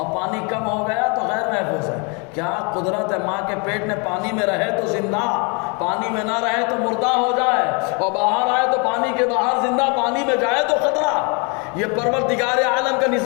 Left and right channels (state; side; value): quieter; right; 33.6 dB